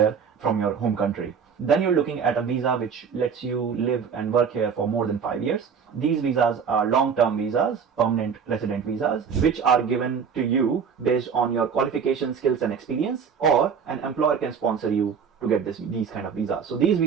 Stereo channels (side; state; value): left; quieter; 6.6 dB